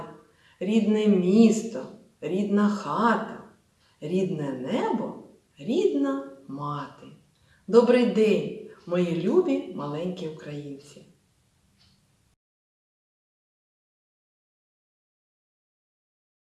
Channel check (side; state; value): both; identical; correlation 1.00